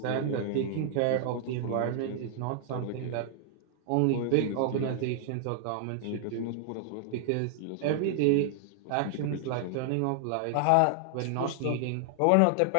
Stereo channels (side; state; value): both; different; correlation -0.01